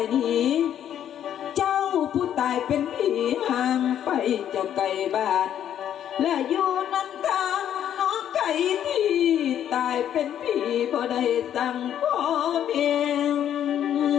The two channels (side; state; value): right; quieter; 10.2 dB